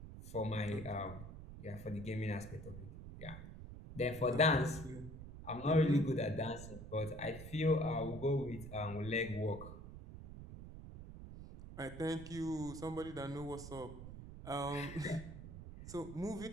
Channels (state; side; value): noise; right; rumble, 12 dB below the sound